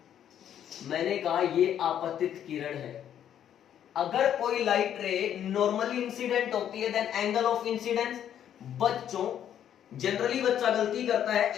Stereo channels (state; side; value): quieter; right; 10.0 dB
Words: मैंने कहा ये आपतित किरण है। अगर कोई लाइट रे नॉर्मली इंसिडेंट होती है देन एंगल ऑफ इंसिडेंस, बच्चों जनरली बच्चा गलती करता है,